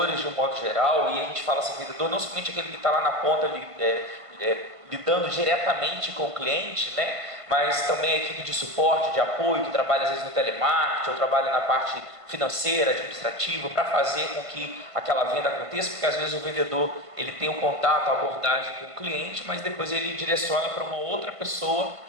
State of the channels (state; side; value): late; left; 1.5 ms